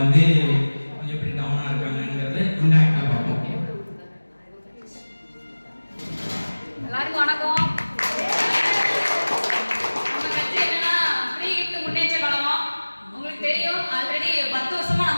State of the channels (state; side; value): inverted; both; correlation -1.00